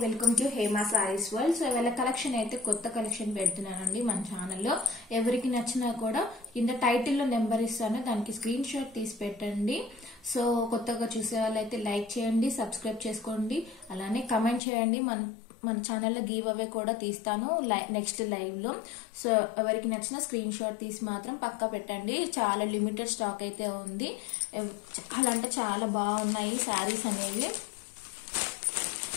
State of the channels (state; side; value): drops out; right; at 14.6 s